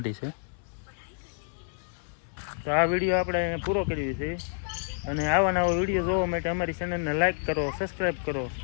છે. તો આ વિડીયો આપણે અહીંયા પૂરો કરીએ છીએ, અને આવા નવા વિડીયો જોવા માટે અમારી ચેનલને લાઇક કરો, સબસ્ક્રાઈબ કરો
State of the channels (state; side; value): silent; right; 59 dB below the other